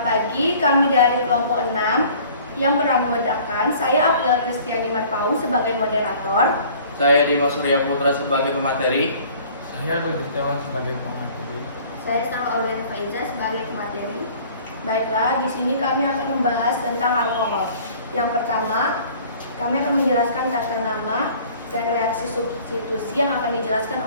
lagi kami dari kelompok 6 yang beranggotakan saya Abdul Kristiani Marpau sebagai moderator, saya Dimas Surya Putra sebagai pemateri, saya Rudi Setiawan sebagai pemateri, saya Salma Aurel Faiza sebagai pemateri. Baiklah, di sini kami akan membahas tentang alkohol. Yang pertama, kami akan menjelaskan tata nama dan reaksi substitusi yang akan dijelaskan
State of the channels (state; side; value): inverted; both; correlation -0.51